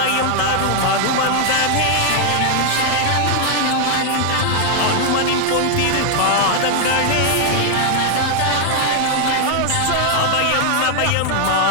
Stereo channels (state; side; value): different; both; correlation 0.00